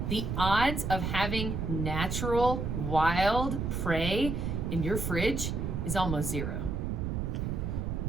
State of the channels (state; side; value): noise; right; rumble, 1 dB below the sound